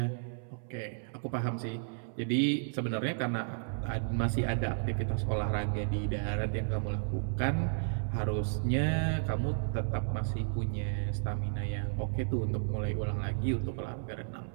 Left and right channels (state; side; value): silent; left; 56 dB below the other